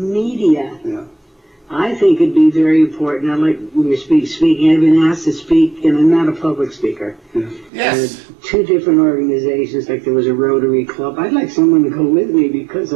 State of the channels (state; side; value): drops out; left; at 7.7 s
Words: I think it'd be very important. I like when you speaking. I've been asked to speak, and I'm not a public speaker. Yes. 2 different organizations, like there was a Rotary Club. I'd like someone to go with me because